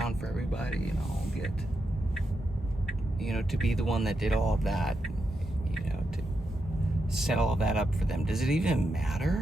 for everybody, I'll get, to be the one that did all of that, to set all of that up for them. Does it even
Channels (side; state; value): both; normal; correlation 0.85